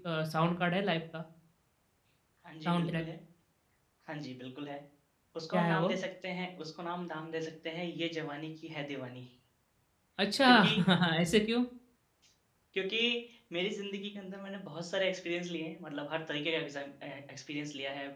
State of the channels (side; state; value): both; identical; correlation 1.00